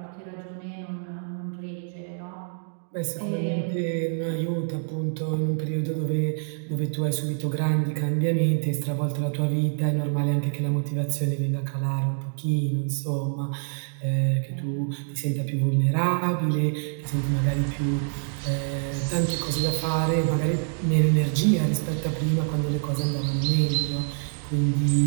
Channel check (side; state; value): left; silent; digital silence